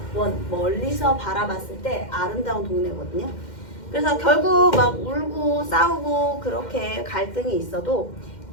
멀리서 바라봤을 때 아름다운 동네거든요. 그래서 결국 막 울고 싸우고 그렇게 갈등이 있어도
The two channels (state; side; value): late; right; 2.1 ms